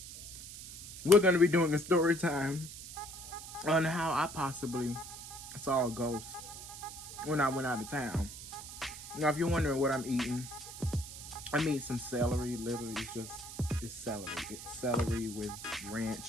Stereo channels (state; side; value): noise; right; hiss, 12 dB below the sound